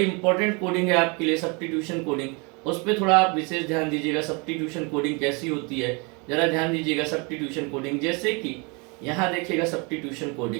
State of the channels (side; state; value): left; quieter; 31.0 dB